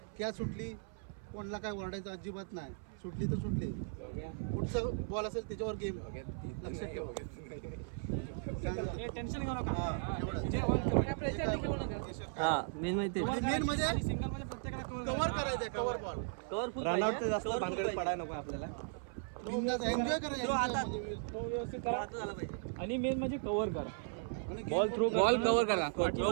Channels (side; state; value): left; silent; 53 dB below the other